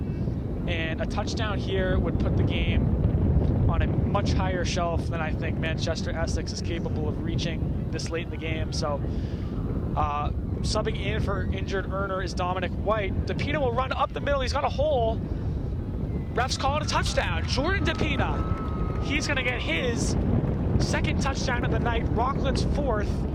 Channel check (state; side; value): identical; both; correlation 1.00